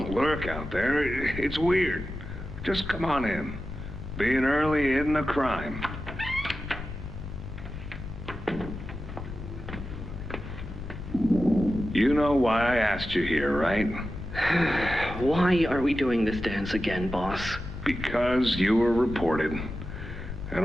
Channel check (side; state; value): left; noise; rumble, 10 dB below the sound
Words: lurk out there. It's weird. Just come on in. Being early isn't a crime. You know why I asked you here, right? Why are we doing this dance again, boss? Because you were reported. And